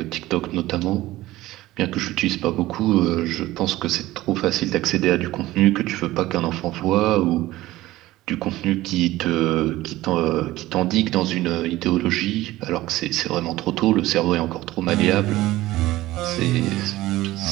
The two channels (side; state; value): left; quieter; 16.9 dB